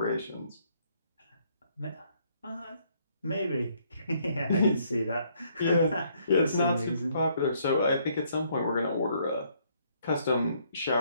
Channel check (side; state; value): both; inverted; correlation -0.68